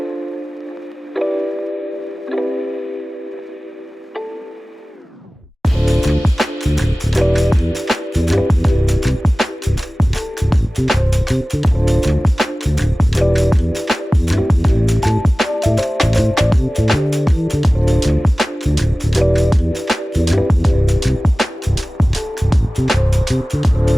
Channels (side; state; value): both; normal; correlation 0.97